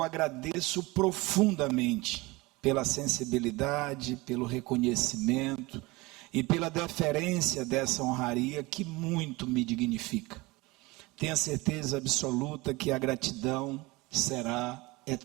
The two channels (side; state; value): left; quieter; 22.7 dB